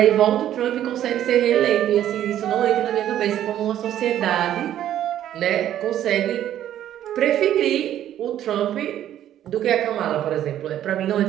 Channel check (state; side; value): quieter; left; 11.5 dB